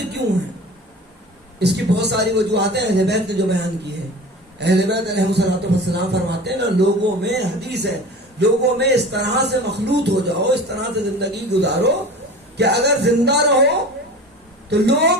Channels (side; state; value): both; normal; correlation 0.37